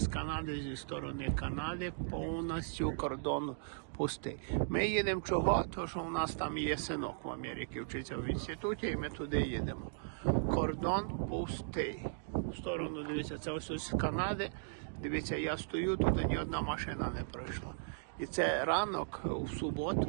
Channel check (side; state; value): left; silent; digital silence